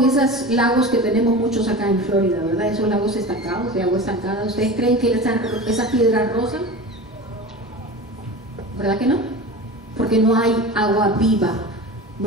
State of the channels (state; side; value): normal; both; correlation 0.32